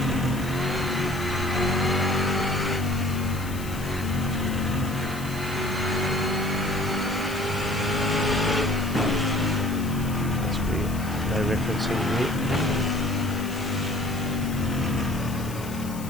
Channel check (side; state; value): left; noise; hiss, 15 dB below the sound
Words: That's weird. No referencing here.